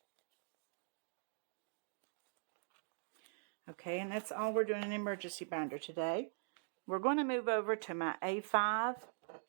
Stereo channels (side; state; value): left; silent; digital silence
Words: Okay, and that's all we're doing in emergency binder today. We're going to move over to my A5.